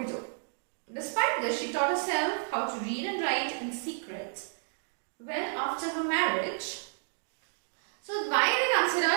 Despite this, she taught herself how to read and write in secret. Well, after her marriage, so why they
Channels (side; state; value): left; silent; digital silence